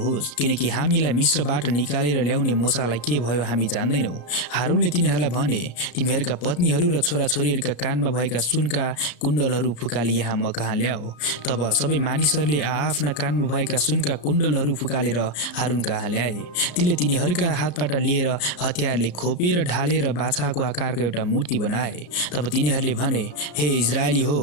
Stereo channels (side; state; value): right; late; 34 ms